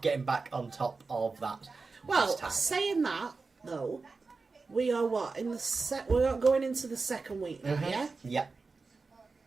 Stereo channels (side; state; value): left; quieter; 4.2 dB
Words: getting back on top of that. Well, saying that, though, we are what? We're going into the second week now, yeah? Yeah.